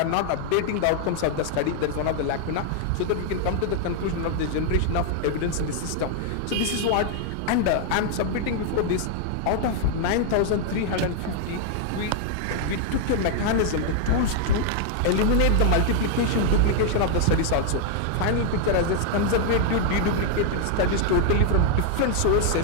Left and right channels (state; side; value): different; both; correlation 0.00